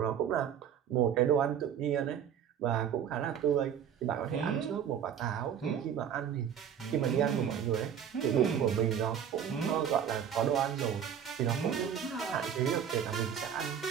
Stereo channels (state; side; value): quieter; left; 8.6 dB